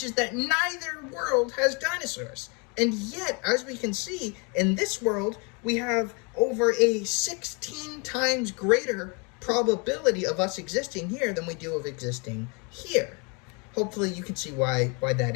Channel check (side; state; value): right; quieter; 32.7 dB